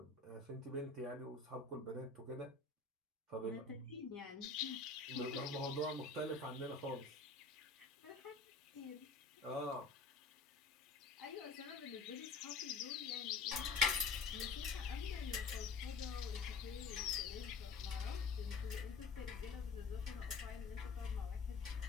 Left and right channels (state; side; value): quieter; right; 4.2 dB